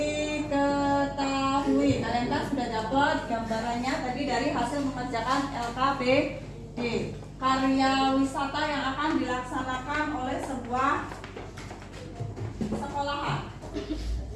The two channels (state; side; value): identical; both; correlation 1.00